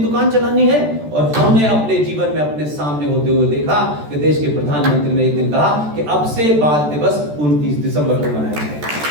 चलानी है। और हमने अपने जीवन में अपने सामने होते हुए देखा कि देश के प्रधानमंत्री ने एक दिन कहा कि अब से बाल दिवस 29 दिसंबर को मनाया जाएगा।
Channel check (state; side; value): late; left; 13 ms